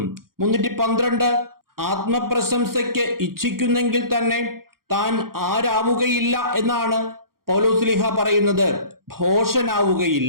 312 ആത്മപ്രശംസയ്ക്ക് ഇച്ഛിക്കുന്നെങ്കിൽ തന്നെ താൻ ആരാവുകയില്ല എന്നാണ് പൗലോസ്ലീഹ പറയുന്നത്?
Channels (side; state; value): left; late; 0.92 ms